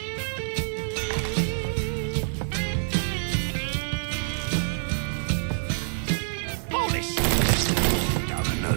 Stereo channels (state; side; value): silent; left; 61 dB below the other